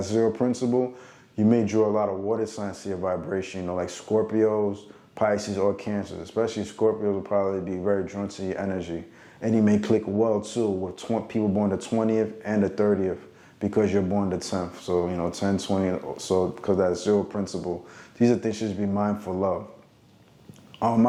zero principle, you may draw a lot of water signs to your vibration, you know, like Scorpios, Pisces, or Cancers. Especially Scorpios will probably be very drawn to your energy. And you may click well too with people born the 20th and the 30th because you're born the 10th. So, you know, 10, 20, so because that zero principle. These are things you should be mindful of. I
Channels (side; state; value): both; identical; correlation 1.00